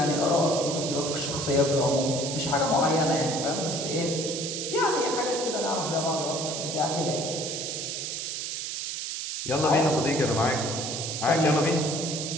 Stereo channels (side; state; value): right; noise; hiss, 4 dB below the sound